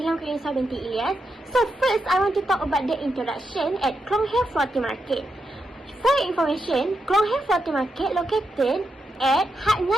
Khlong in Southern Ilyas. So first, I want to talk about the introduction at Khlong Floating Market. For your information, Khlong Floating Market located at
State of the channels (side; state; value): both; normal; correlation 0.85